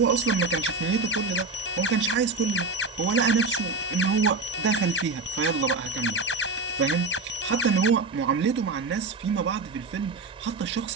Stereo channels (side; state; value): left; quieter; 3.8 dB